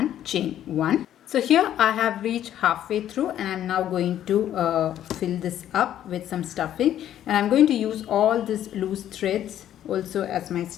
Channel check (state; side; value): quieter; right; 11.3 dB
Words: chain 1. So here I have reached halfway through, and I'm now going to fill this up with some stuffing, and I'm going to use all these loose threads also as my